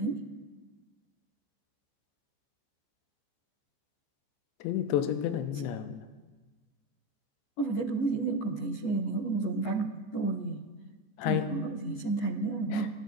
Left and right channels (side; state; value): right; late; 14 ms